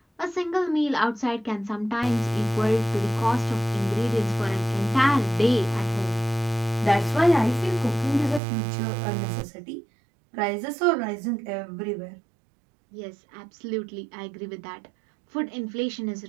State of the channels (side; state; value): left; drops out; at 8.4 s